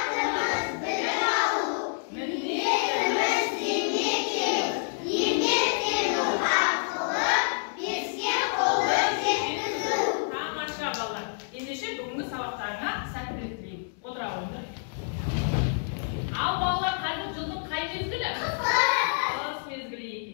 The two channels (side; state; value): right; silent; digital silence